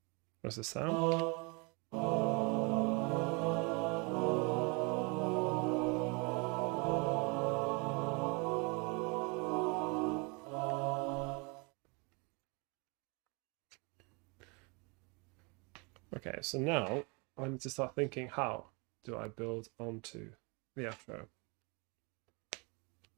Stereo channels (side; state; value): left; quieter; 30.8 dB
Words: What's the sound? Okay, so now I need to start thinking, how do I build onto the outro?